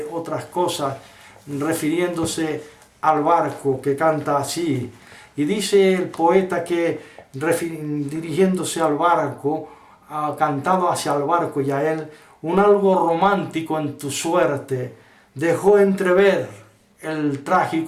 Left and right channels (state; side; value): identical; both; correlation 1.00